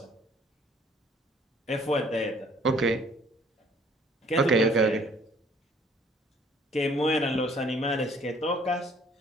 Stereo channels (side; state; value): both; normal; correlation 0.58